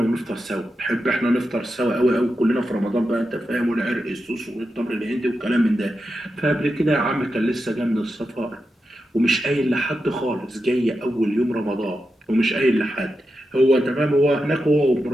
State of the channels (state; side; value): normal; both; correlation 0.89